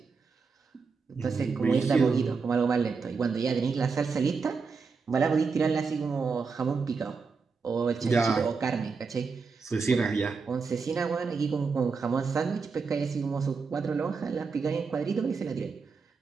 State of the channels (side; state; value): left; quieter; 5.0 dB